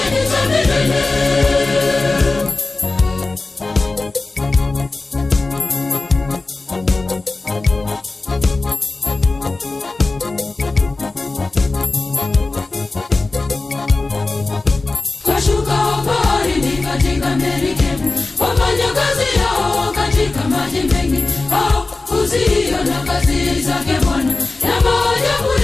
ni za milele. Kashuka baharini katika merikebu, wafanya kazi yao katika maji mengi. Uziona kazi zake Bwana, na maajabu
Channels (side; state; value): right; quieter; 3.4 dB